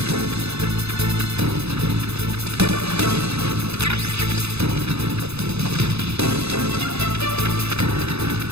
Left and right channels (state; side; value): late; left; 0.79 ms